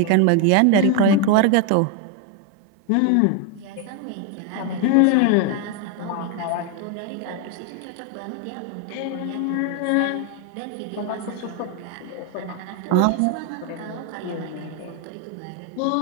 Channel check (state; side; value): different; both; correlation 0.01